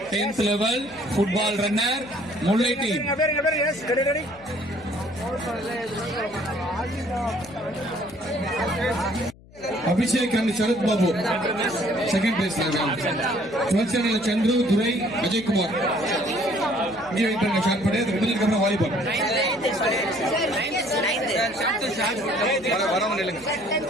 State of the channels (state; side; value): noise; left; hum, 24 dB below the sound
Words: 10th level football runner Mullai team. Ready. Abhishek and Sharat Babu second place. 12th standard Chandru, Durai, Ajay Kumar. இங்கே wait பண்ணுங்க. Shot பண்ணி அது முடிஞ்சதுக்கு அப்புறம் volleyball. வரவன் இல்லைங்க.